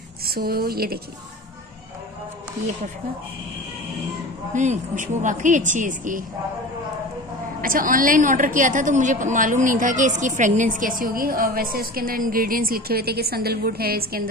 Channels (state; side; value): normal; both; correlation 0.35